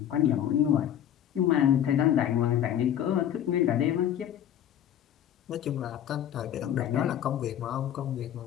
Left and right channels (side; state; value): right; quieter; 10.5 dB